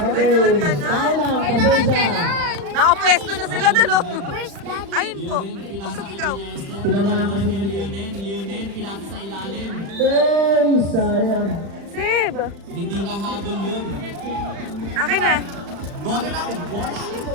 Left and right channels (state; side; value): late; left; 35 ms